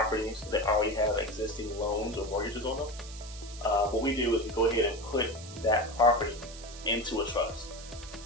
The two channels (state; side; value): noise; right; hiss, 15 dB below the sound